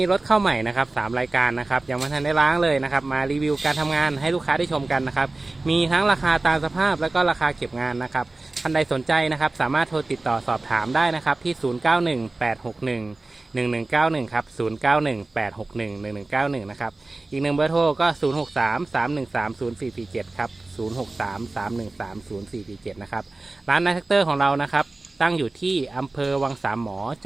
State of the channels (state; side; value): quieter; left; 3.1 dB